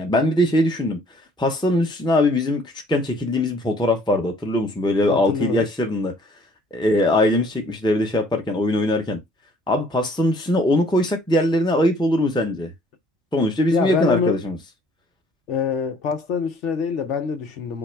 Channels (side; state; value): both; normal; correlation 0.58